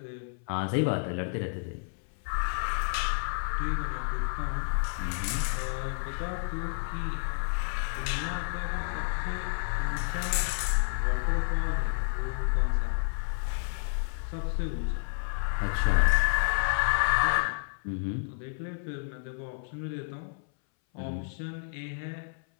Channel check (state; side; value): silent; right; 58 dB below the other